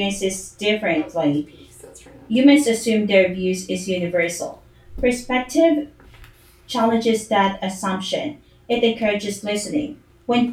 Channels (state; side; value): identical; both; correlation 1.00